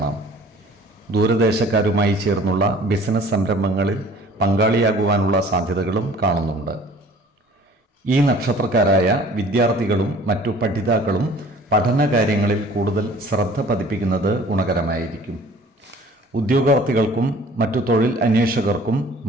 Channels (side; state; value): both; normal; correlation 0.50